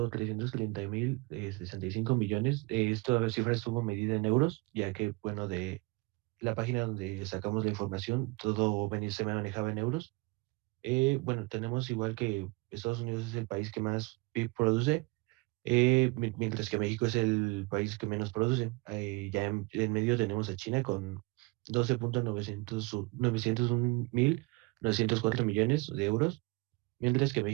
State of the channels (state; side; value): quieter; left; 25.8 dB